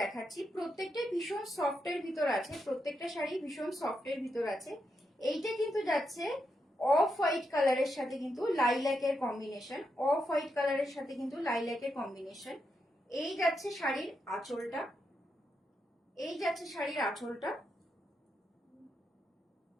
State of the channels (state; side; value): normal; both; correlation 0.83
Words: প্রত্যেকটা ভীষণ সফটের ভিতর আছে, প্রত্যেকটা শাড়ি ভীষণ সফটের ভিতর আছে। এইটা কিন্তু যাচ্ছে অফ হোয়াইট কালারের সাথে কিন্তু লাইল্যাকের কম্বিনেশন, অফ হোয়াইট কালারের সাথে কিন্তু লাইল্যাকের কম্বিনেশন। এই যাচ্ছে শাড়ির আঁচলটা, এই যাচ্ছে শাড়ির আঁচলটা,